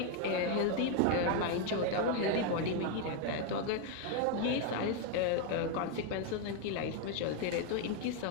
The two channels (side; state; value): both; different; correlation 0.01